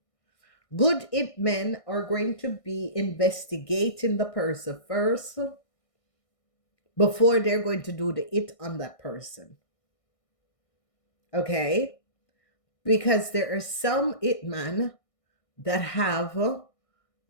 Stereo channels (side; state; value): right; late; 1.6 ms